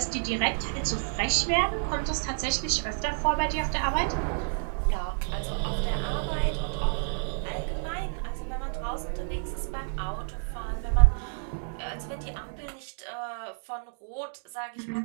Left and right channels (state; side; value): silent; left; digital silence